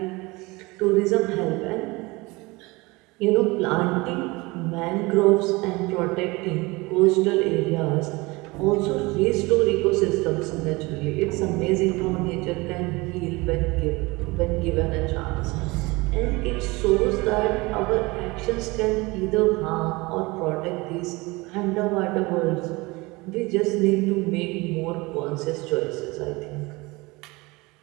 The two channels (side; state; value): left; quieter; 23.6 dB